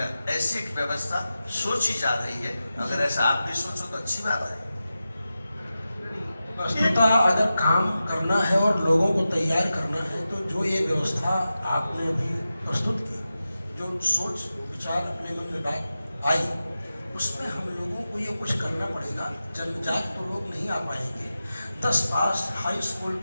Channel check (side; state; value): both; inverted; correlation -0.93